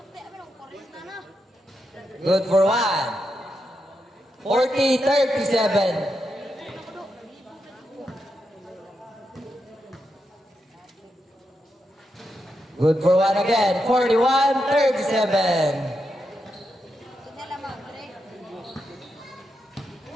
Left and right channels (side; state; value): both; normal; correlation 0.85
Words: Good for one. 40-37. Good for one again.